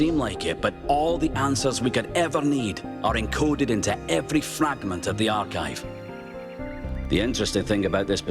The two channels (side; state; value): both; identical; correlation 1.00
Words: like it, but all the answers we could ever need are encoded into every fragment of the archive. The interesting thing about this